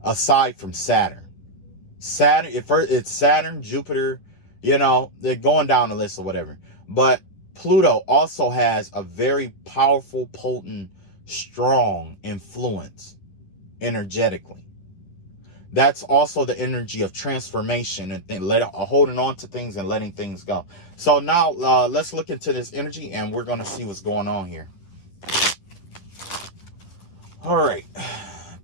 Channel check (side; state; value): right; late; 10 ms